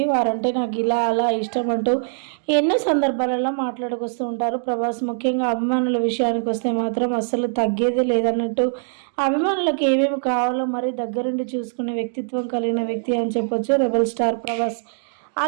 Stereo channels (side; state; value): left; silent; digital silence